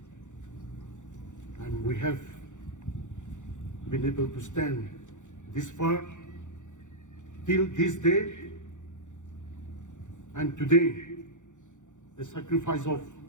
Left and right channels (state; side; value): late; right; 0.85 ms